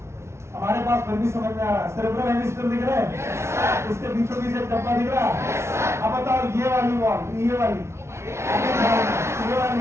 हमारे पास फिर भी समझ में आ रहा है। सेरेब्रल हेमिस्फीयर दिख रहा है, इसके बीचों बीच एक डब्बा दिख रहा है। अब बताओ, ये वाली वॉल, ये वाली, ये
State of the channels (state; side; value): late; left; 0.13 ms